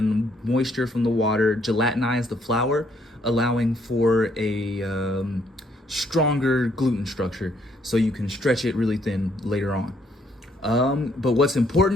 moisture from the water gelatinize the flour, allowing for a stronger gluten structure, so you can stretch it really thin later on. But what's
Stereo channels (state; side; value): normal; both; correlation 0.69